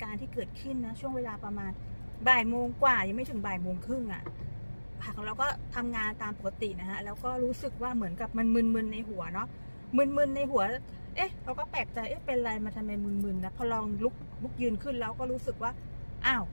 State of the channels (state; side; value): inverted; both; correlation -1.00